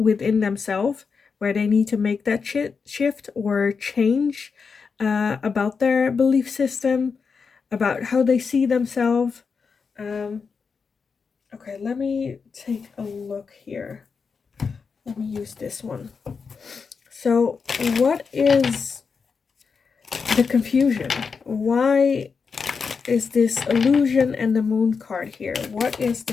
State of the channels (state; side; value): quieter; right; 5.4 dB